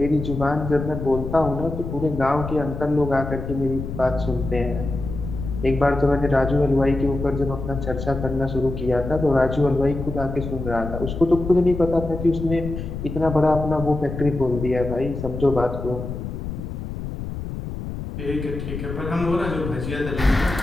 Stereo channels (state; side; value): noise; left; rumble, 7 dB below the sound